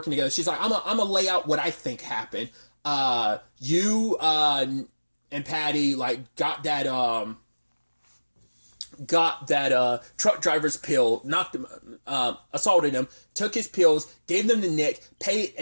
together. She's like, I'm gonna lay out what I think happened. You and Patty like got that truck driver's pill, knocked him, assaulted him, took his pills, gave them to Nick, paid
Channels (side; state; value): both; inverted; correlation -1.00